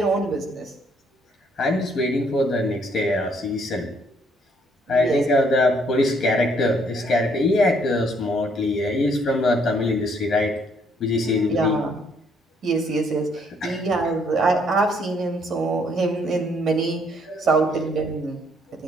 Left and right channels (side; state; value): both; normal; correlation 0.68